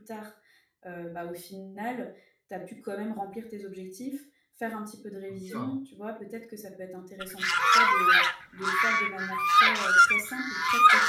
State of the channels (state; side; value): identical; both; correlation 1.00